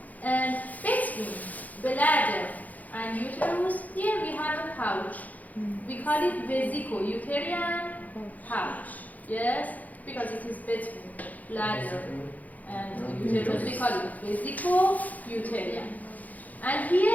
And between bladder and uterus, here we have a pouch. We call it vesico-uterine pouch. Yes, because it is between bladder and uterus, we call it vesico-uterine. And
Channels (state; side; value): late; right; 0.079 ms